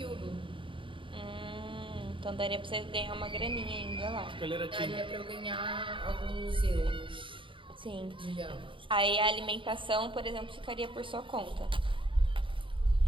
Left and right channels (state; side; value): late; left; 0.25 ms